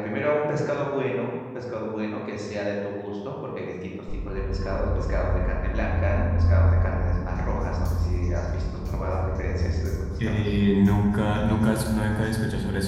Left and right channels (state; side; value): identical; both; correlation 1.00